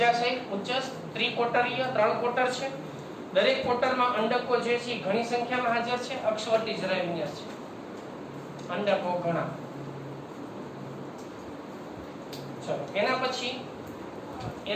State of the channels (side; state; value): both; identical; correlation 1.00